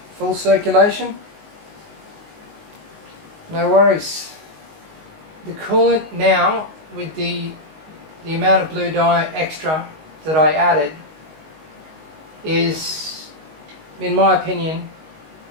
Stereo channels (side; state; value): left; late; 19 ms